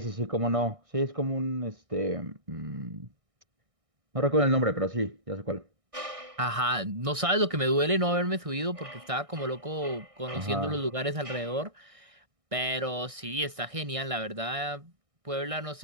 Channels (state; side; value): late; left; 1.6 ms